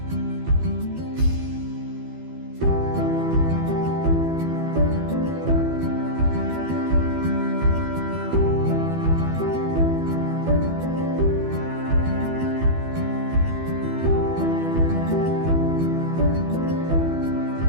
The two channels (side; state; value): left; late; 12 ms